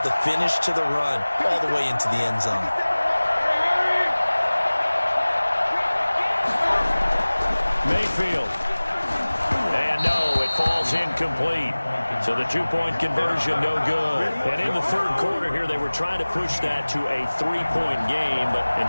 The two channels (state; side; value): inverted; both; correlation -1.00